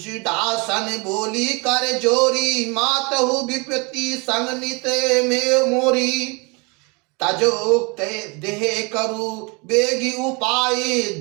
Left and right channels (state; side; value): quieter; left; 29.4 dB